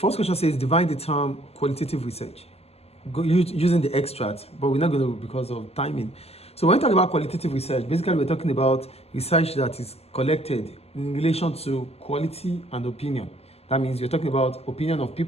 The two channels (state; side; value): late; right; 0.29 ms